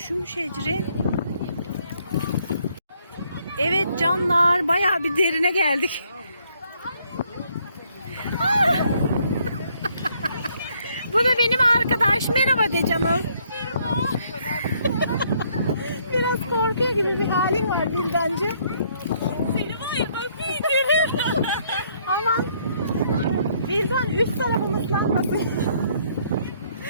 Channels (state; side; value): inverted; both; correlation -0.68